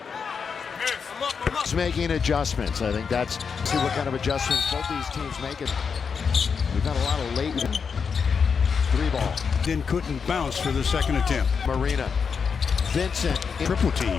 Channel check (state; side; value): quieter; right; 6.0 dB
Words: It's making adjustments. I think that's see what kind of adjustments both these teams make. It. We've got a lot of late 3-ball. Then couldn't bounce for the second attempt. Marina. Vincent. Triple